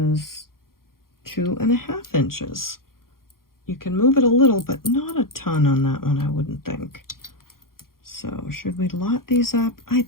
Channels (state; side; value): late; right; 0.92 ms